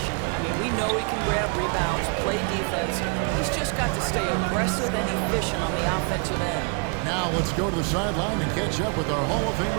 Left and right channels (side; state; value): left; quieter; 34.5 dB